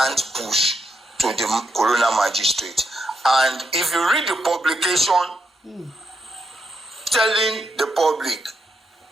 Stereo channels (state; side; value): normal; both; correlation 0.81